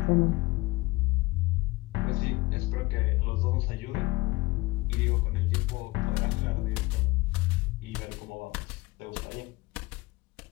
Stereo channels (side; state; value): right; quieter; 21.7 dB